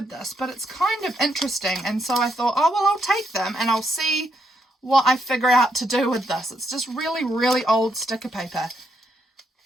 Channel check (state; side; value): normal; both; correlation 0.77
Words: this, but it's kind of interesting. And so I thought, oh, well, I'll take them and I'll see what I figure out to do with this. It's just really, really old sticker paper.